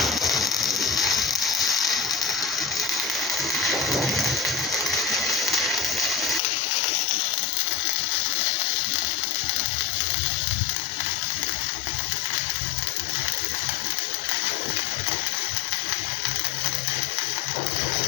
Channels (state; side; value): drops out; right; at 6.4 s